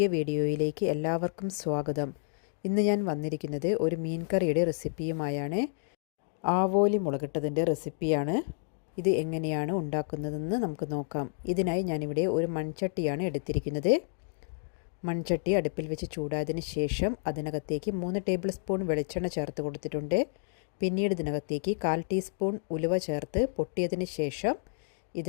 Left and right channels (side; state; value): right; silent; digital silence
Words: വീഡിയോയിലേക്ക് എല്ലാവർക്കും സ്വാഗതം. ഇന്ന് ഞാൻ വന്നിരിക്കുന്നത് ഒരു മീൻ കറിയുടെ റെസിപ്പിയുമായാണ്. ആവോലി മുളകിട്ടതിൻ്റെ റെസിപ്പിയാണ്. ഇത് എങ്ങനെയാണ് ഉണ്ടാക്കുന്നതെന്ന് നമുക്ക് നോക്കാം. ഇതിനായി ഞാനിവിടെ ഒരു മൺചട്ടിയാണ് എടുത്തിരിക്കുന്നത്. മൺചട്ടി അടുപ്പിൽ വെച്ച് ചൂടായതിന് ശേഷം അതിനകത്തേക്ക് 3 ടേബിൾ സ്പൂൺ വെളിച്ചെണ്ണ ചേർത്ത് കൊടുത്തിട്ടുണ്ട്. പിന്നീട് ഇതിനകത്തേക്ക് 1/4 ടീസ്പൂൺ ഉലുവ ചേർത്ത് പൊട്ടിയതിന് ശേഷം